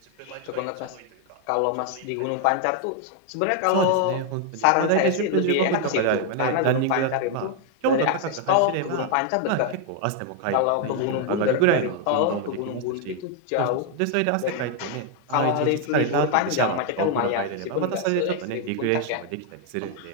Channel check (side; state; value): both; different; correlation 0.00